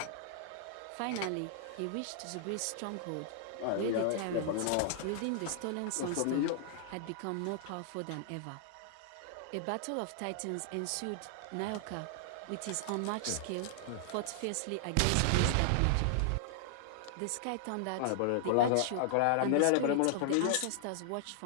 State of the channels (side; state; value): both; different; correlation 0.00